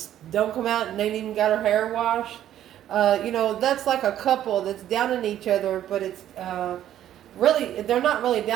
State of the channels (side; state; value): left; quieter; 11.6 dB